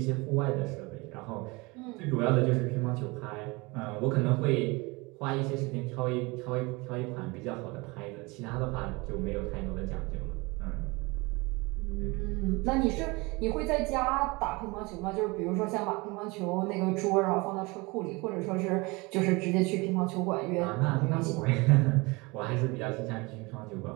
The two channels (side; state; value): left; quieter; 25.4 dB